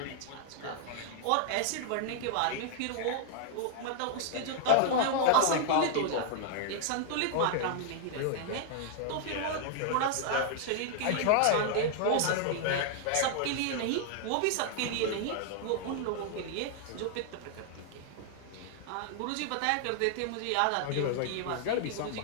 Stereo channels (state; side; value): different; both; correlation 0.00